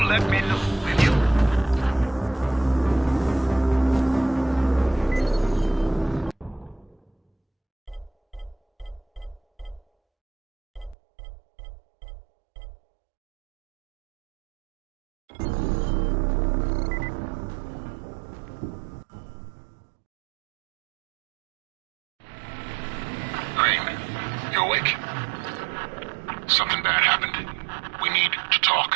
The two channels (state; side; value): drops out; left; at 11.0 s